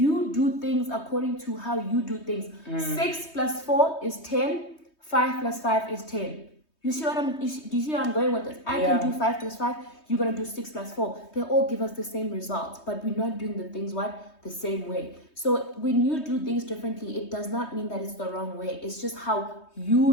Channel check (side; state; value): right; late; 3.2 ms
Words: do things according to how you do things. 6 plus 4 is 10. 5 plus 5 is 10. Do you see where I'm going with this? I can do 5 plus 5. You're gonna do 6 plus 4. They all give us the same results, but we're not doing the things the same way. So when you do things differently, it does not mean that it's the wrong way. It's just how